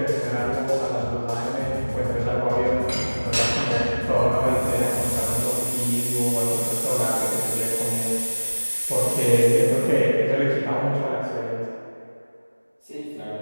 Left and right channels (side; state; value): both; inverted; correlation -1.00